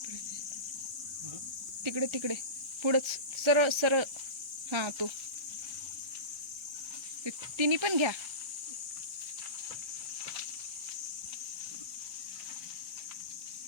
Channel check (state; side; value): late; left; 1.3 ms